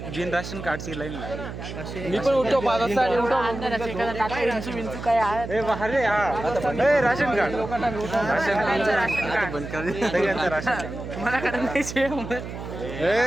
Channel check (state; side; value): noise; right; hum, 9 dB below the sound